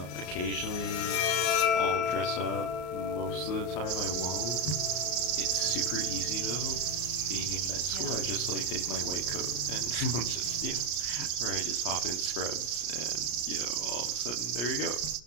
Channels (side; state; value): right; late; 34 ms